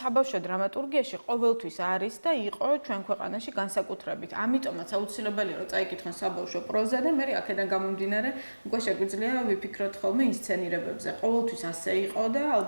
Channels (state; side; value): inverted; both; correlation -1.00